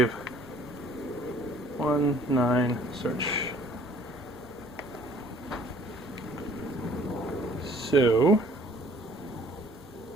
9, search. So,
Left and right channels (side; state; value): both; normal; correlation 0.56